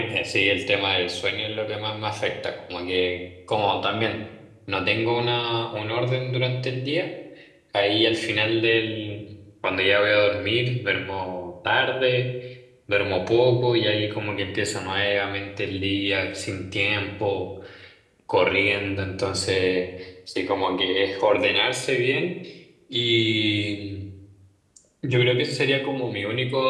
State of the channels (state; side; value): identical; both; correlation 1.00